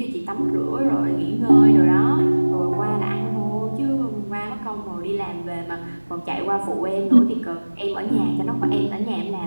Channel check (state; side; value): inverted; both; correlation -1.00